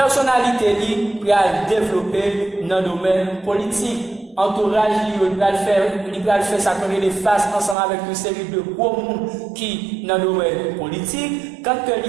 li pour développer dans le domaine politique. Entourage il va faire ça comme les face ensemble avec une série de gros monde qui dans le domaine politique. Quand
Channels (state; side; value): drops out; left; at 7.8 s